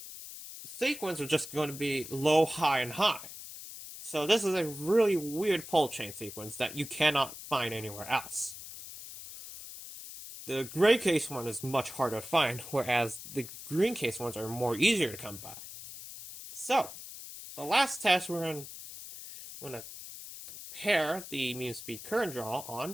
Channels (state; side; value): noise; left; hiss, 12 dB below the sound